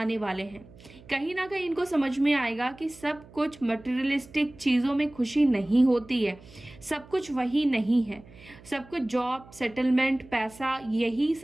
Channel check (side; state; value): right; noise; hum, 22 dB below the sound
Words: वाले हैं। कहीं ना कहीं इनको समझ में आएगा कि सब कुछ मटेरियलिस्टिक चीज़ों में खुशी नहीं होती है, सब कुछ वही नहीं है, सब कुछ जॉब, सेटलमेंट, पैसा, यही